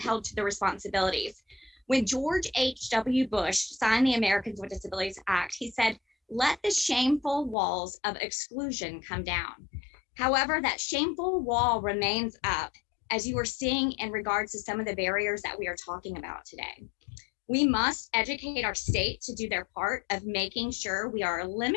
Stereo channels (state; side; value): drops out; right; at 7.6 s